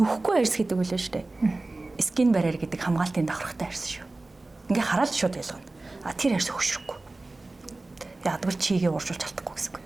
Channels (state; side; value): quieter; left; 3.1 dB